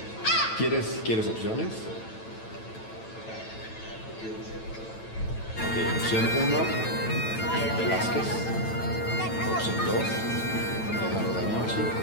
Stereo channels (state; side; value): late; right; 9.0 ms